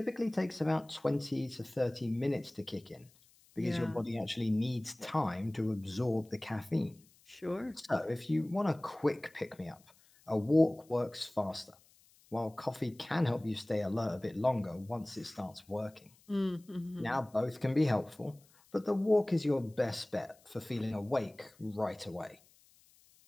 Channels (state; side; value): noise; left; hiss, 29 dB below the sound